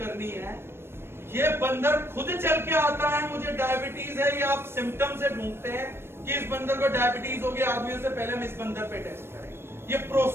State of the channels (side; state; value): left; late; 0.12 ms